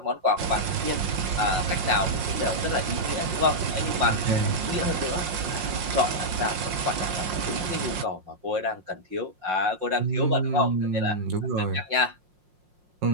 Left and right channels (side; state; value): left; late; 5.6 ms